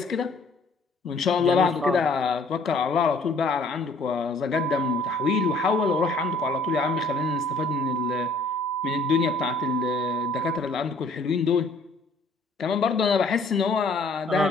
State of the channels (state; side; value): quieter; right; 3.1 dB